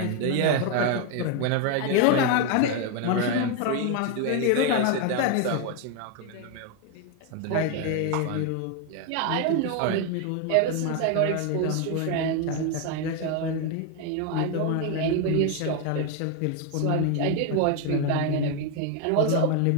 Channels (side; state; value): both; different; correlation 0.01